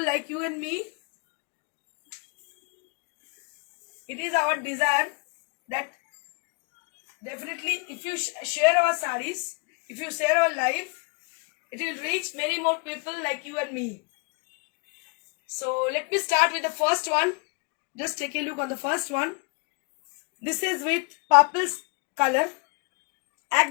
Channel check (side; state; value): right; quieter; 32.4 dB